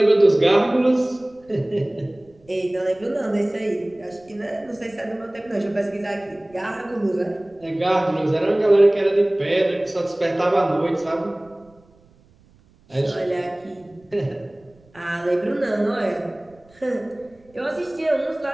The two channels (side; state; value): right; noise; rumble, 30 dB below the sound